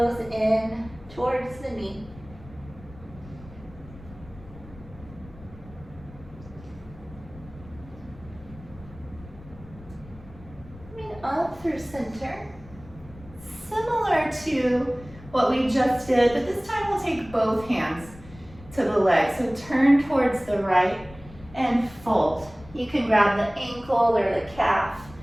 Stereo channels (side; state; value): left; noise; rumble, 19 dB below the sound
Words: in towards the knee. Coming up through center. Similar to what we just did, but this time we'll take both hands to the legs. So turn towards the right and fold. You can grab the ankle or the calf.